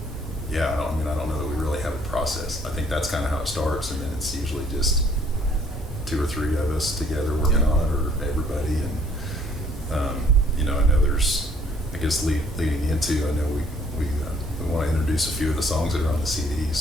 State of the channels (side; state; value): both; normal; correlation 0.61